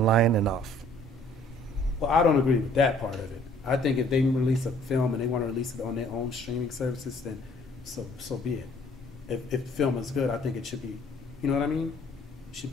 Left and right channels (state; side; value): normal; both; correlation 0.58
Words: and off. Well, I don't agree with that part of it. I think if they release a film and they want to release it on their own streaming services, then so be it. If the film is good, I think it should be. You know what I mean? It should